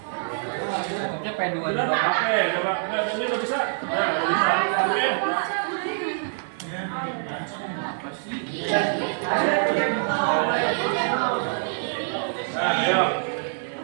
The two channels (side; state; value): left; silent; 62 dB below the other